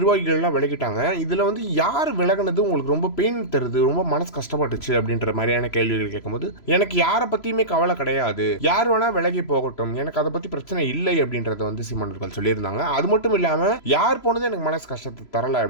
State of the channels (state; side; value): late; right; 3.0 ms